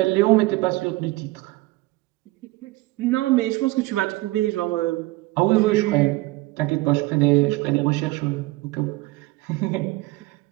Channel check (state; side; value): quieter; left; 20.2 dB